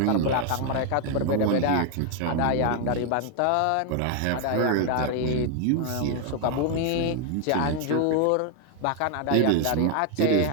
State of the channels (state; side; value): different; both; correlation 0.00